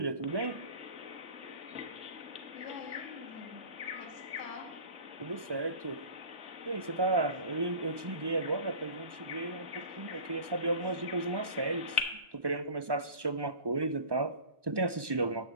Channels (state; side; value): late; left; 1.2 ms